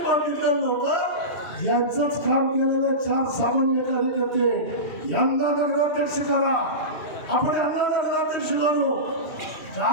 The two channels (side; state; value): right; late; 2.7 ms